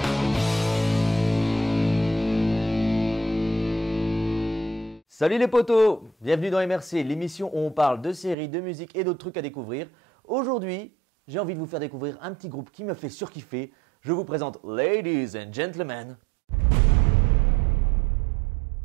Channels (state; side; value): drops out; left; at 8.3 s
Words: Salut les potos, bienvenue dans MRC, l'émission où on parle de séries, de musique et d'autres trucs à découvrir. Aujourd'hui, j'ai envie de vous faire découvrir un petit groupe qui me fait surkiffer. Je vous présente Ladies and Gentlemen,